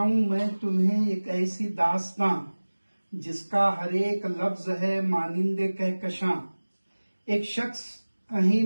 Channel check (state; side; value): inverted; both; correlation -1.00